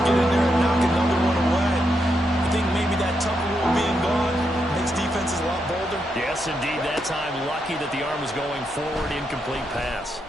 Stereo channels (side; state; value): both; normal; correlation 0.82